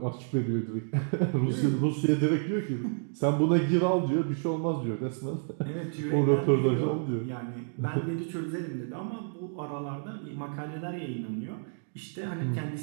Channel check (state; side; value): silent; left; digital silence